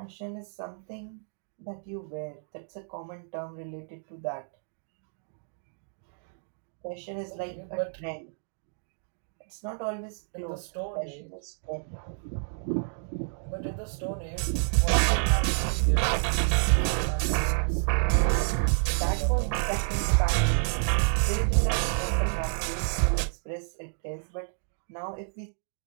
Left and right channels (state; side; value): silent; left; digital silence